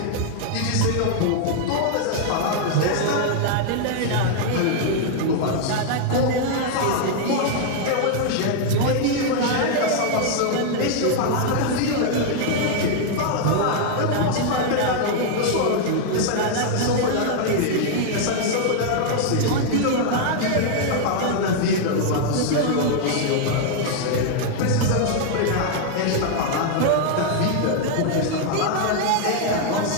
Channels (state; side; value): different; both; correlation 0.00